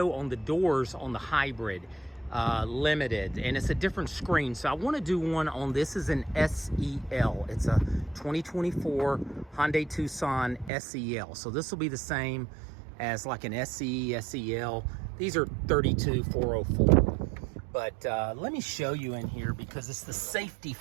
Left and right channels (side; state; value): left; drops out; at 10.7 s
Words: on the doors on the hybrid limited, and it's a different screen. So I want to do one on this is an SEL. It's a 2024 Hyundai Tucson SEL. So this will be the same as like an SE, SEL. These are 32404. But let me show you in here because it's the safety